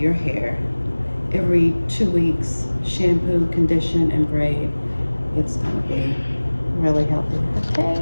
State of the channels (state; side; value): inverted; both; correlation -1.00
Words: hair every 2 weeks, shampoo, condition, and braid, it's gonna be really healthy.